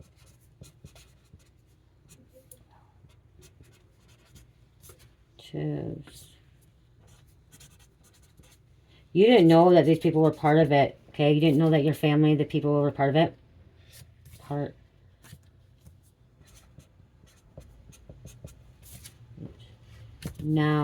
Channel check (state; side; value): identical; both; correlation 1.00